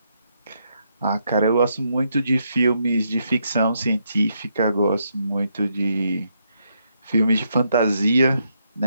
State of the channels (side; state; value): both; inverted; correlation -0.78